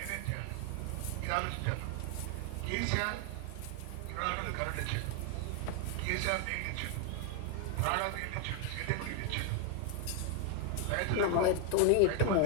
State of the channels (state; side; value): different; both; correlation 0.01